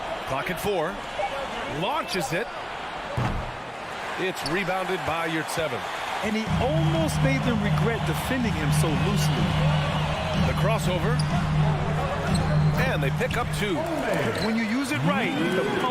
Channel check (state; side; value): identical; both; correlation 1.00